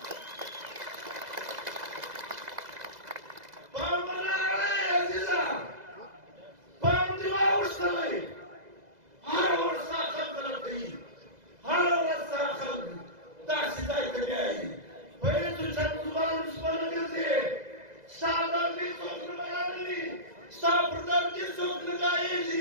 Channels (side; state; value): left; late; 2.0 ms